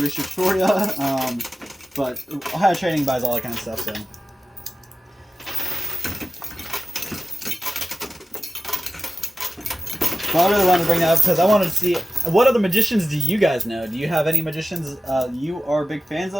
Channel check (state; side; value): normal; both; correlation 0.95